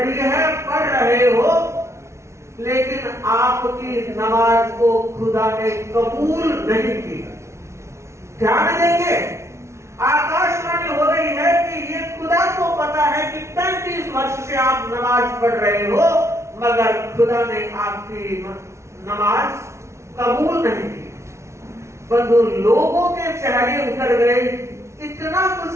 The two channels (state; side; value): late; left; 0.13 ms